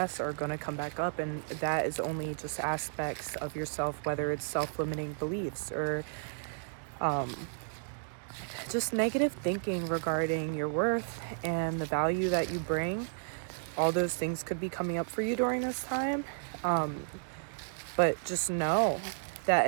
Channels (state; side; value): silent; left; digital silence